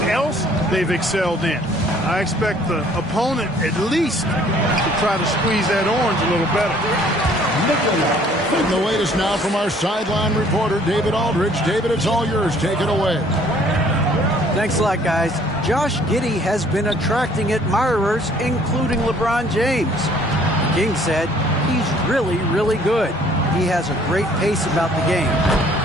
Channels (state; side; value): normal; both; correlation 0.58